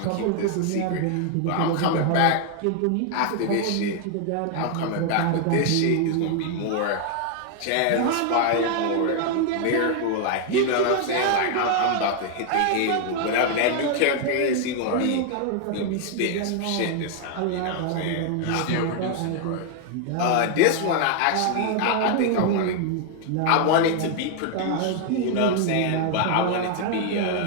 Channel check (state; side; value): different; both; correlation 0.00